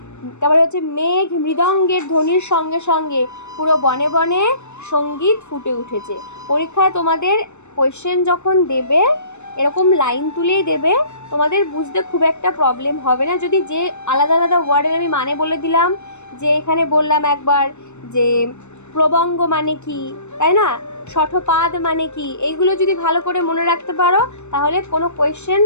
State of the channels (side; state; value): right; late; 0.82 ms